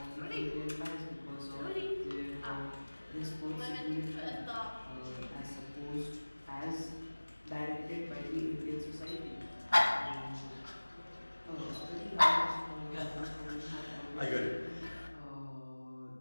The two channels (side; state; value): both; inverted; correlation -1.00